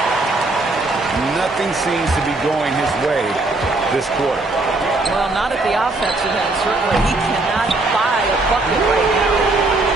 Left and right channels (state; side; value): quieter; left; 3.0 dB